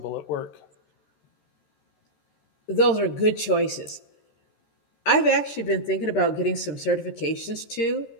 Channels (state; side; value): late; right; 13 ms